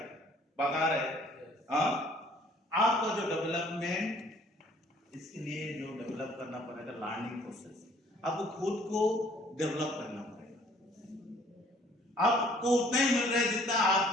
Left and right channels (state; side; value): normal; both; correlation 0.58